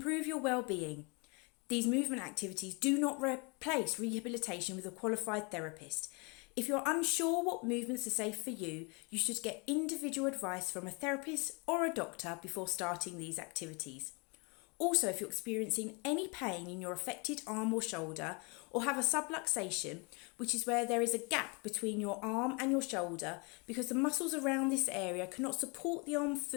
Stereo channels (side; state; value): right; quieter; 31.0 dB